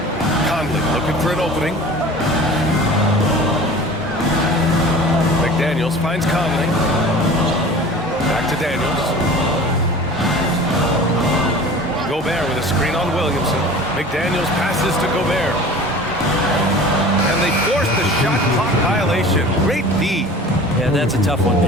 Conley looking for an opening. McDaniels finds Conley. Back to Daniels. Gobert with a screen on Williamson. McDaniels passes to Gobert. And they force the shot clock violation. Great D. Yeah, that's a tough one.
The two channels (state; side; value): normal; both; correlation 0.41